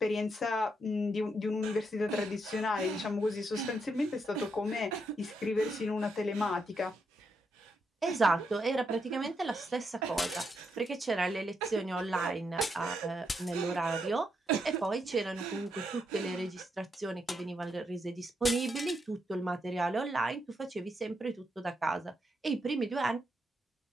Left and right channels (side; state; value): both; normal; correlation 0.80